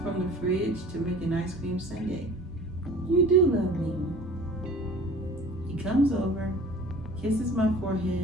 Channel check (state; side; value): normal; both; correlation 0.45